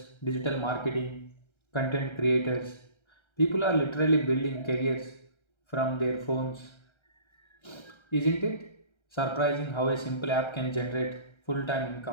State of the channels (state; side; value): late; right; 1.3 ms